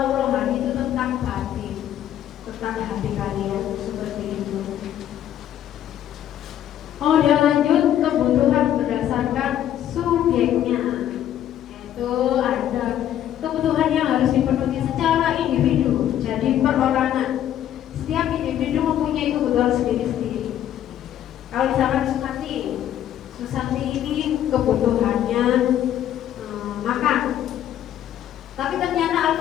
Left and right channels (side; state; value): right; quieter; 11.1 dB